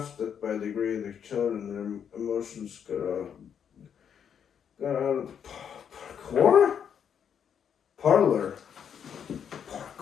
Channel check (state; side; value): quieter; right; 8.0 dB